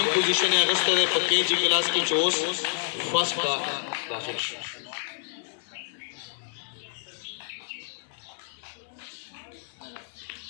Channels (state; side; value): silent; right; 59 dB below the other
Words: پوزیشن یې اگست ده په KG کلاس کې 24 فرست کا داخل شو